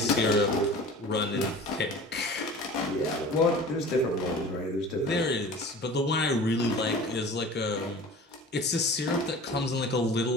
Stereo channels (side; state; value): both; normal; correlation 0.40